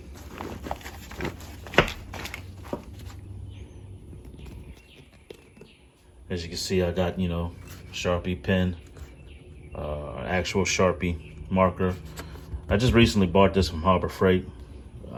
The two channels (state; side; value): identical; both; correlation 1.00